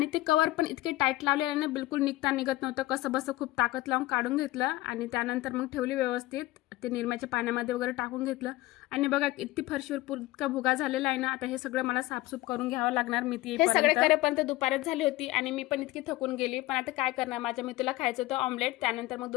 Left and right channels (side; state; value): right; quieter; 18.3 dB